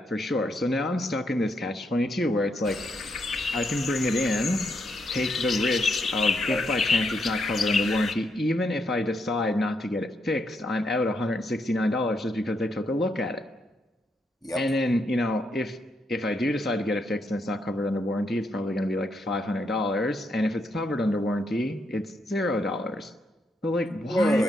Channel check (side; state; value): both; normal; correlation 0.78